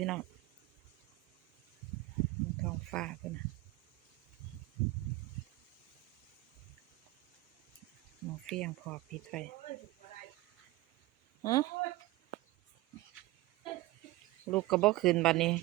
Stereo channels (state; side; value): quieter; left; 18.8 dB